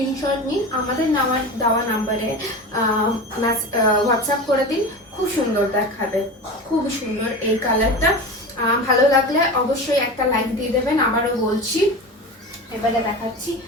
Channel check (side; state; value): both; normal; correlation 0.29